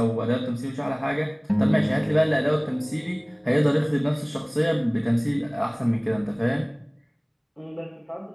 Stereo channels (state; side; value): identical; both; correlation 1.00